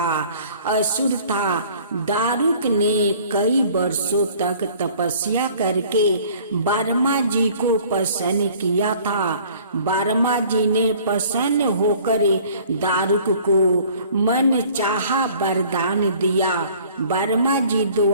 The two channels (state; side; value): inverted; both; correlation -0.52